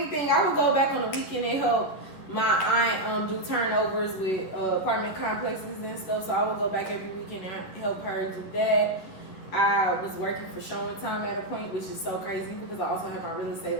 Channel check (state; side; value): late; right; 11 ms